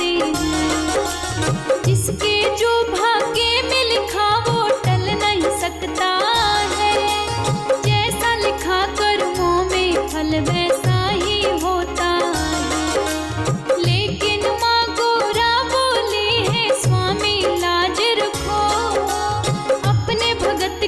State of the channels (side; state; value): both; identical; correlation 1.00